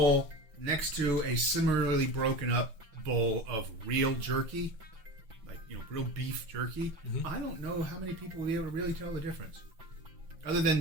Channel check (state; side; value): late; left; 5.9 ms